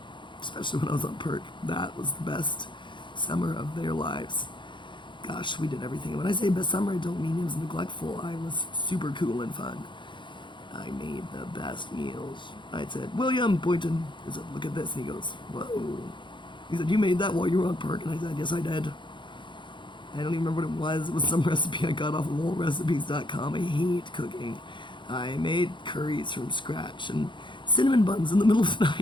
Especially when I was on perk. That was the best summer of their lives. Gosh, we did everything. When I say best summer, I don't mean it was neglectful. I was super cool and fun. I made the best meals. I said, "William," Boynton, I said, "look at this." And he goes, "Whoa." He said, "You made that while you were on perk?" And I said, "Yes, I did." I don't even remember what it was. It was some recipe I got off of oldrecipes.com. I hate cooking. I made curries from scratch and cinnamon buns in the middle of the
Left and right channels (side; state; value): right; late; 0.23 ms